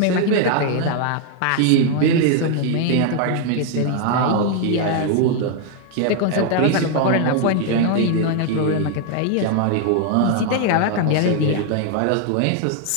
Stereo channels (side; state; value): both; different; correlation 0.00